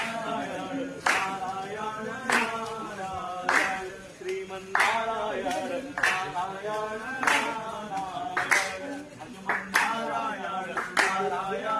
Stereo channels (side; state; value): both; identical; correlation 1.00